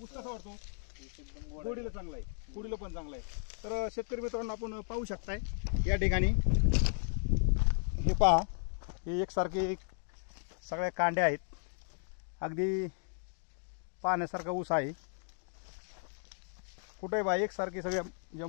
ऊस कसा वाटतो? एकदम गोड गोडीला चांगला आहे, गोडीला पण चांगला आहे। तर शेतकरी मित्रांनो, आपण पाहू शकताय या ठिकाणी हे पहा, हे एकसारखे सगळ्या कांड्या आहेत, अगदी पाहण्यासारखा ऊस आहे। कुठे बा एकसारखे सगळ्या ज्या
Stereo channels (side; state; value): right; silent; 55 dB below the other